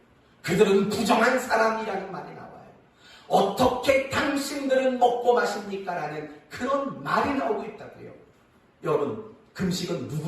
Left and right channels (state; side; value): identical; both; correlation 1.00